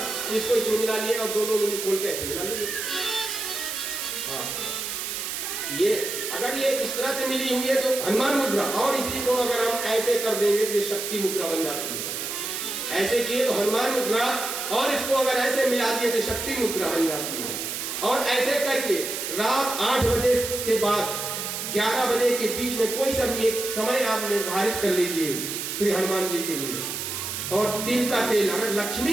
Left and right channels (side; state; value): right; noise; hiss, 4 dB below the sound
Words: इसको इसमें मिला लिए और दोनों उंगली खोल के ऐसे मिला लीजिए। हाँ, ये अगर ये इस तरह से मिली हुई है तो हनुमान मुद्रा, और इसी को अगर हम ऐसे कर देंगे तो ये शक्ति मुद्रा बन जाती है। ऐसे किए तो हनुमान मुद्रा, और इसको अगर ऐसे मिला दिए तो शक्ति मुद्रा बन जाती है। और ऐसे करके रात 8 बजे के बाद 11 बजे के बीच में कोई सा भी एक समय आप निर्धारित कर लीजिए श्री हनुमान जी के लिए। और तिल का तेल, अगर